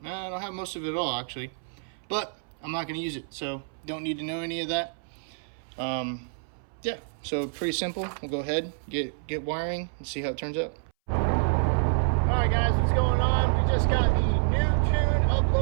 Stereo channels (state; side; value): silent; left; 59 dB below the other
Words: don't have most of it all actually, but I'm not going to use it, so don't need to know any of that. Yeah, so pretty simple. We'll go ahead, get wiring and see how it turns out. Alright guys, what's going on? We just got the new tune